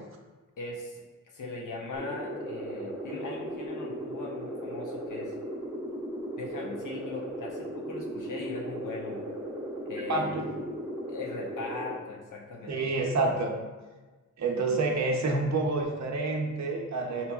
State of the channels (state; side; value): normal; both; correlation 0.18